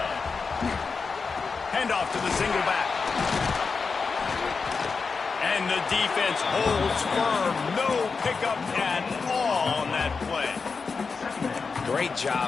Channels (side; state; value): right; quieter; 4.9 dB